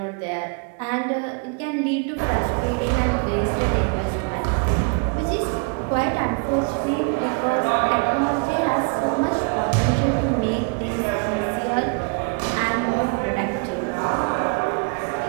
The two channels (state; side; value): quieter; left; 36.6 dB